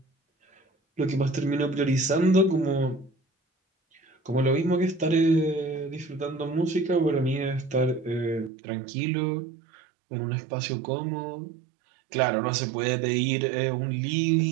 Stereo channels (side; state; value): left; drops out; at 8.5 s